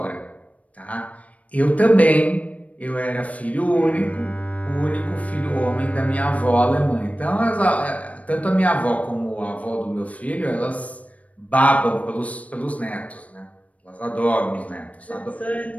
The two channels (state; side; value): late; right; 0.067 ms